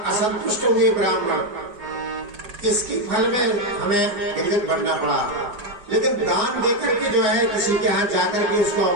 असंतुष्ट हुए ब्राह्मण, इसकी फल में हमें गिरगिट बनना पड़ा। लेकिन दान देकर के जो है किसी के यहाँ जाकर के उसको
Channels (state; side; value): late; left; 4.9 ms